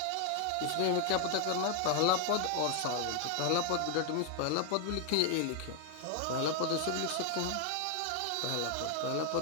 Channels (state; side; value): different; both; correlation 0.00